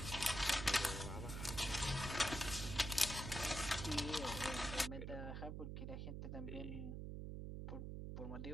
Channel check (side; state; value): right; noise; hum, 5 dB below the sound